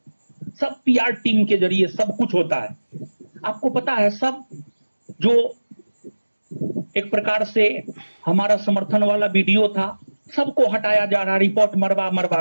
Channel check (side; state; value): both; inverted; correlation -1.00